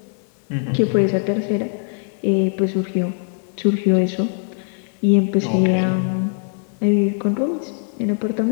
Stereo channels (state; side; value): silent; right; 65 dB below the other